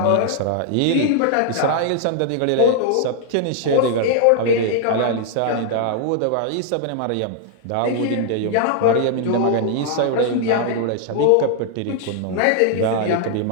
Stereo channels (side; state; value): both; different; correlation 0.00